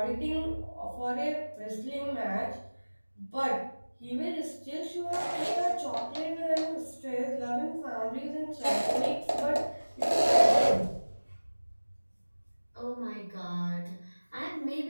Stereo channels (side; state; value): both; inverted; correlation -1.00